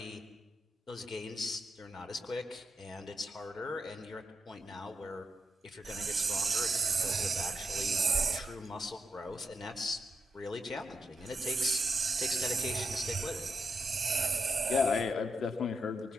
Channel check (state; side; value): normal; both; correlation 0.85